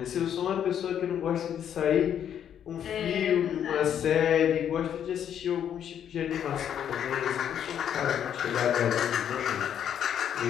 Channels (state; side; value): quieter; right; 9.3 dB